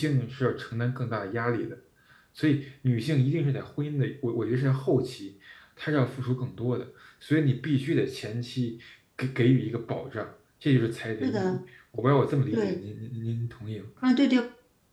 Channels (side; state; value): both; identical; correlation 1.00